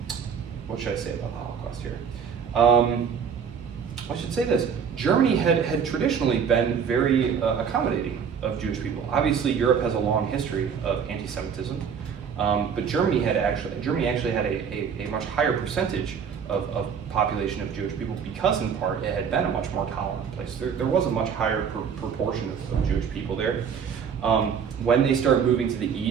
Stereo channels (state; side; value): quieter; left; 7.0 dB